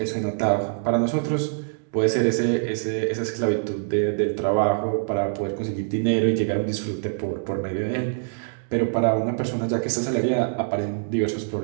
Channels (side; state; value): left; silent; 62 dB below the other